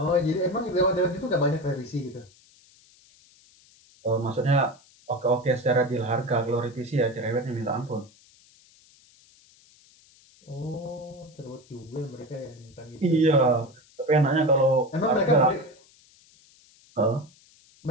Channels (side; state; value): left; noise; hiss, 28 dB below the sound